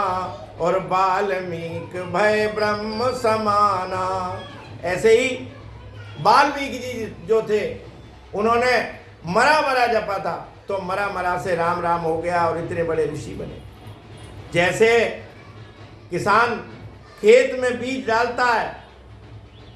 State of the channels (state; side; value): identical; both; correlation 1.00